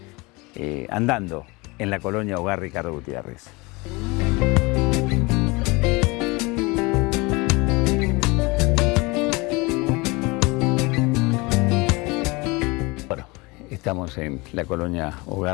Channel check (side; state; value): right; quieter; 25.1 dB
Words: andando en la Colonia Hogar Ricardo Gutiérrez. Estamos en la Colonia